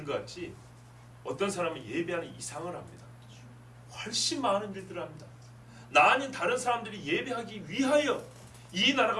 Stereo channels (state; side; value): identical; both; correlation 1.00